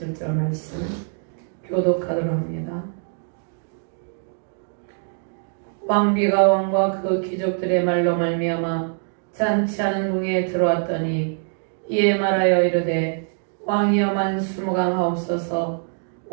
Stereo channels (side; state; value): left; silent; 57 dB below the other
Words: 말씀 교독하도록 합니다. 왕비가 왕과 그 귀족들의 말로 말미암아 잔치하는 궁에 들어왔더니 이에 말하여 이르되 왕이여 만수무강하옵소서.